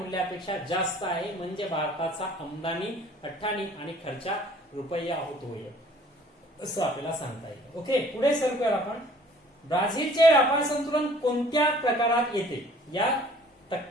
जास्त आहे. म्हणजे भारताचा आमदानी 98 आणि खर्चा रुपया होतोय असं आपल्याला सांगता येईल. ओके, पुढे सरकूया आपण. ब्राझीलचे व्यापार संतुलन कोणत्या प्रकारात येते? या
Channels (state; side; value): normal; both; correlation 0.53